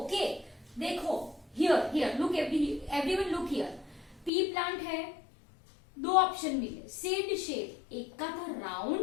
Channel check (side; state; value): right; drops out; at 4.3 s